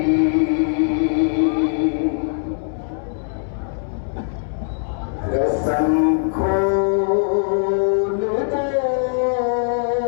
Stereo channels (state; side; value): silent; right; 65 dB below the other